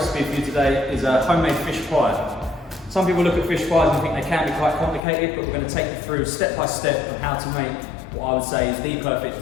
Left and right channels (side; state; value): right; drops out; at 5.0 s